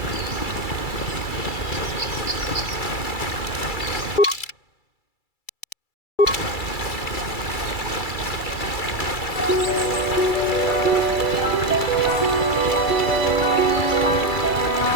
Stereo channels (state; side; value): late; right; 2.3 ms